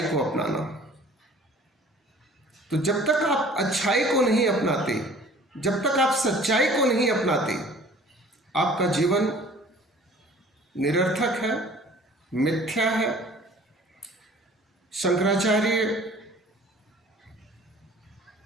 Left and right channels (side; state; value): both; normal; correlation 0.50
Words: को अपनाना। तो जब तक आप अच्छाई को नहीं अपनाते, जब तक आप सच्चाई को नहीं अपनाते, आपका जीवन निरर्थक है, मिथ्या है। शंकराचार्य